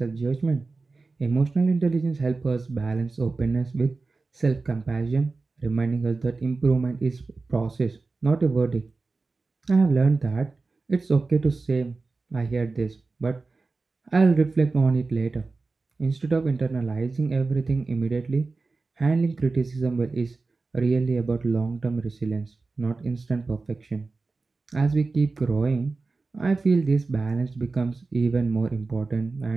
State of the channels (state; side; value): quieter; left; 3.8 dB